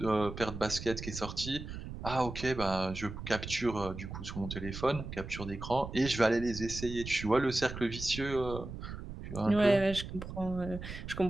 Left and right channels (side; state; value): right; noise; rumble, 9 dB below the sound